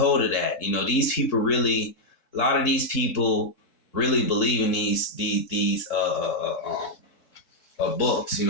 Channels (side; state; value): right; late; 4.6 ms